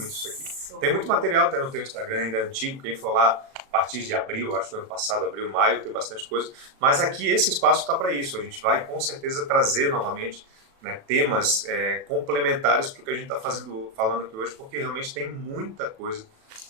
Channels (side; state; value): left; late; 37 ms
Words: isso aqui. Tem muito material até no teu Instagram, ainda antigo, quem for lá a partir de abril, acho que do ano passado, abril, maio, tem bastante coisa. Mas aqui esse espaço está para isso, a gente vai com certeza trazer novamente, né, temas complementares para o que a gente está falando aqui hoje, porque realmente tem muita coisa